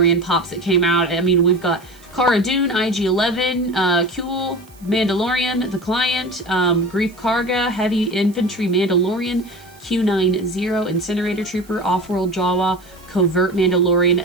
pops that came out. I mean, we've got Cara Dune, IG-11, Kuel, Mandalorian, The Client, Grief Karga, Heavy Infantry Mandalorian, Q90, Incinerator Trooper, Off-World Jawa, Covert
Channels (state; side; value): noise; right; hiss, 27 dB below the sound